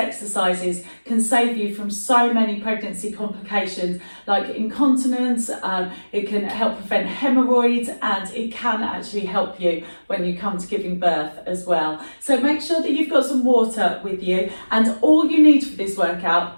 can save you from so many pregnancy complications like incontinence, it can help prevent hemorrhoids, and it can actually help you when you come to giving birth as well. So make sure that you've got some water with you, and all you need for this workout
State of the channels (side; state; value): both; inverted; correlation -1.00